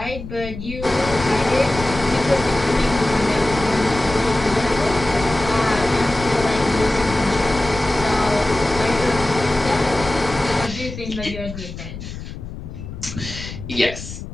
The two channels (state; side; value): noise; left; rumble, 10 dB below the sound